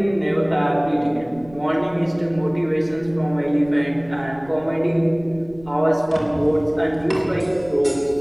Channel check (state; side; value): noise; right; rumble, 22 dB below the sound